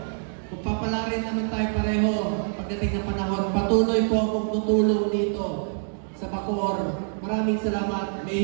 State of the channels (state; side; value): silent; left; digital silence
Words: kung papalarin naman tayo pareho pagdating ng panahon, patuloy po akong tutulong dito sa Bacoor. Maraming salamat,